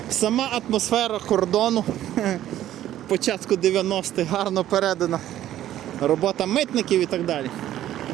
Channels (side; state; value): left; quieter; 12.6 dB